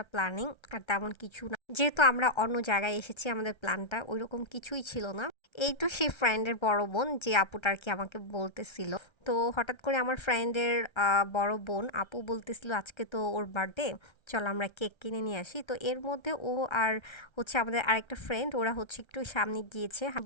প্ল্যানিং, আর তেমন কিছু না, যেহেতু আমরা অন্য জায়গায় এসেছি আমাদের প্ল্যানটা ওইরকম কিছুই ছিল না। এই তো সেই ফ্রেন্ডের বড় বোন যে আপুটা আর কি আমাকে বলতেছিল। তো হঠাৎ করে আমার ফ্রেন্ডের বড় বোন আপু বলতেছিল আজকে তো ওর বার্থডে, চল আমরা কেক কিনে নিয়ে আসি। তো এর মধ্যে ও আর হচ্ছে আমাদের আরেকটা ফ্রেন্ড, ওরা হচ্ছে একটু সামনে গিয়েছে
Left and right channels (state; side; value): late; right; 1.3 ms